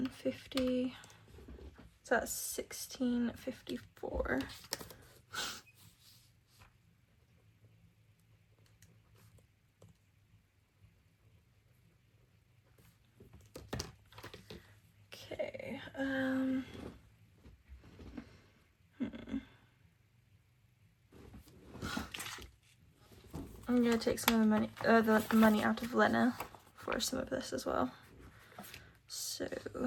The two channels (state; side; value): identical; both; correlation 1.00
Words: So that's $16.54. Okay. I'm gonna take some of the money out of Lena for some of this as well. So